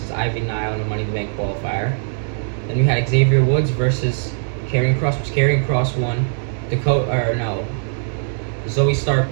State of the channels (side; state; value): left; silent; digital silence